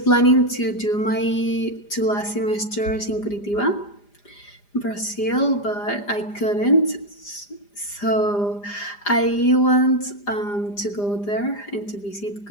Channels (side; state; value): right; late; 4.9 ms